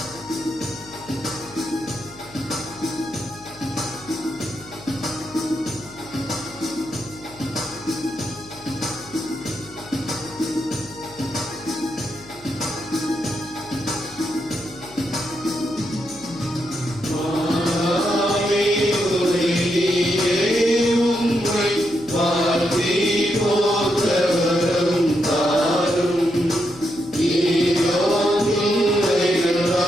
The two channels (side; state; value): left; noise; hum, 23 dB below the sound